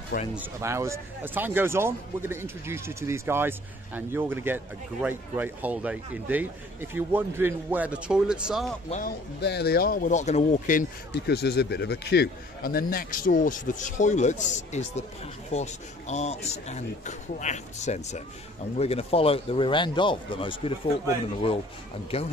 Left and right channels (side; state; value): both; normal; correlation 0.54